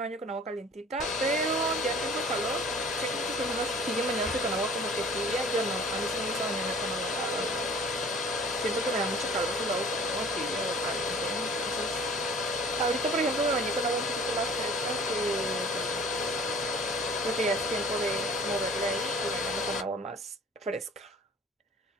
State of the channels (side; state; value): both; normal; correlation 0.48